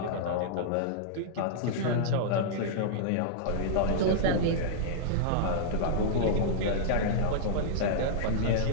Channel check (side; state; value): both; different; correlation -0.02